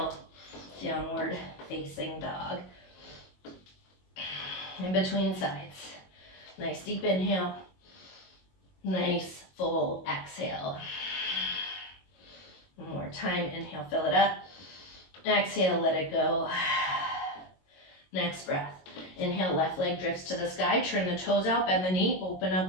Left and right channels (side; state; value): right; late; 22 ms